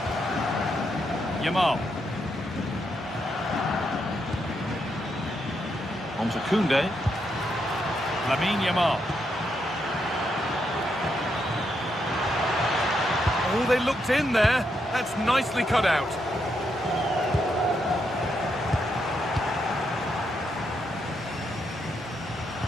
Yamal. On to Koundé. Lamine Yamal. Oh, they looked in there. That's nicely cut out.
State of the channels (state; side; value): normal; both; correlation 0.80